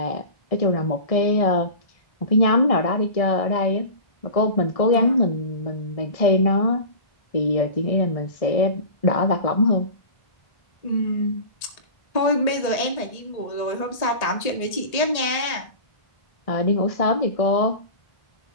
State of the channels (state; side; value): late; right; 1.8 ms